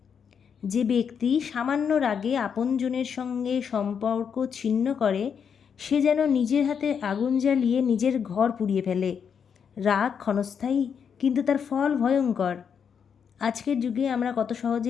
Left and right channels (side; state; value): right; quieter; 7.1 dB